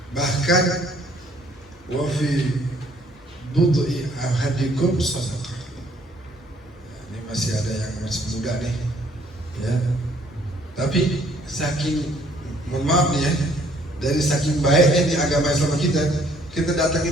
Bahkan wa fi bud'i ahadikum sadaqah. Ini masih ada yang masih muda nih, ya. Tapi saking, mohon maaf nih ya, dari saking baiknya di agama Islam kita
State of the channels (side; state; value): both; normal; correlation 0.62